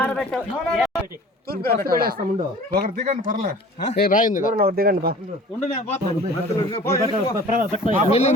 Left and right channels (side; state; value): both; normal; correlation 0.45